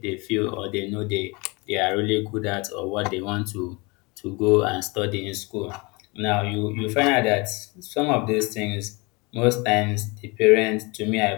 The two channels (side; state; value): right; quieter; 27.1 dB